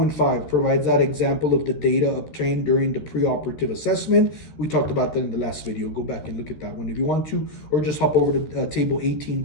provides that example of the data obtained during the preoperative assessment. We talked about that in the last video. Go back and look at that one if you want to, or just hop over to table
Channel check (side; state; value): right; late; 13 ms